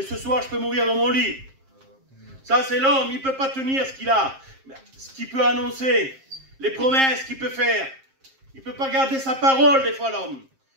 ce soir, je peux mourir dans mon lit. Ça, c'est l'homme. Il ne peut pas tenir ce qu'il a. Ce qu'il peut annoncer. Les promesses qu'il peut faire. Il ne peut pas garder sa parole, des fois, l'homme.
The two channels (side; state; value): left; late; 7.5 ms